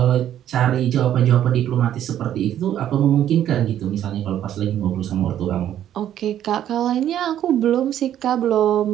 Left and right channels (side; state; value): left; quieter; 11.1 dB